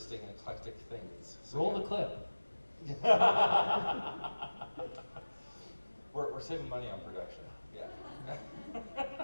eclectic things. So, Roll the yeah. clip. We're saving money on production, yeah.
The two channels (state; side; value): inverted; both; correlation -1.00